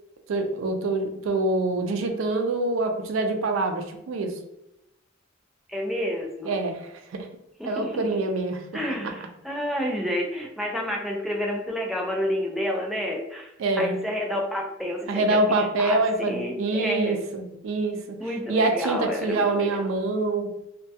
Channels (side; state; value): both; normal; correlation 0.17